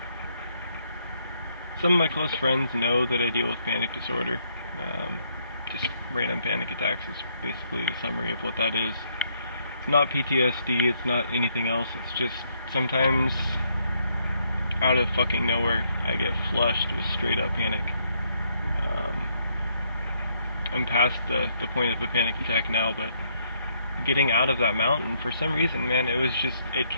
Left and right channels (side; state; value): both; inverted; correlation -0.72